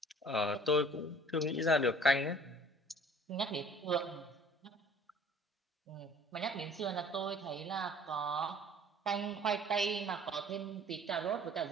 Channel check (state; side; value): normal; both; correlation 0.51